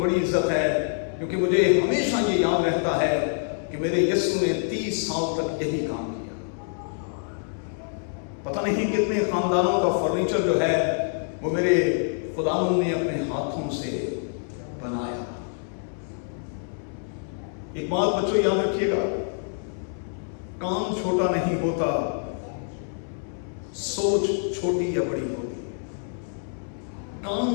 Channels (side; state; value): right; silent; 61 dB below the other